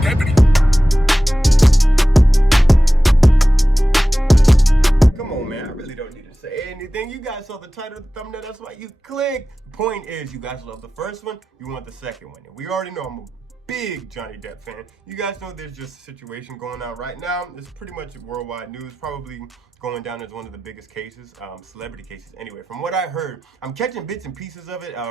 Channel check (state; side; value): normal; both; correlation 0.95